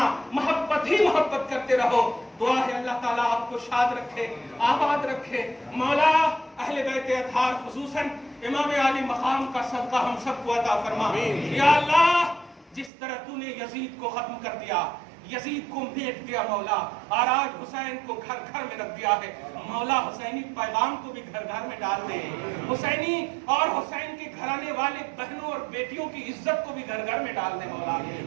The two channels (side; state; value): left; drops out; at 12.9 s